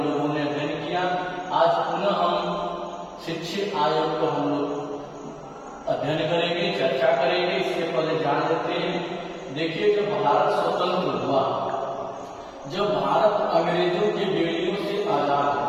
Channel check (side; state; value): both; identical; correlation 1.00